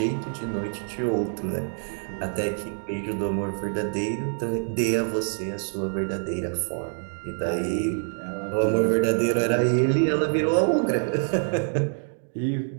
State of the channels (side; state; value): left; silent; 61 dB below the other